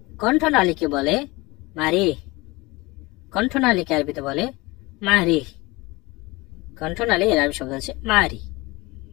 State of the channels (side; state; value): right; quieter; 23.0 dB